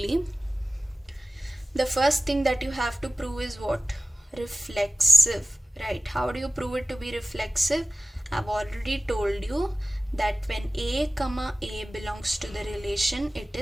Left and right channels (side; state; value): both; normal; correlation 0.96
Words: The first thing that you have to prove is what? Reflexive, right? How do you prove it to be reflexive? I've already told you that when A comma A belongs to the relation, it